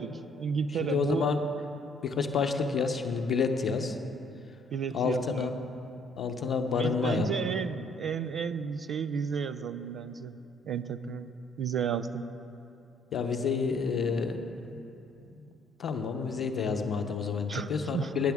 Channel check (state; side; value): normal; both; correlation 0.62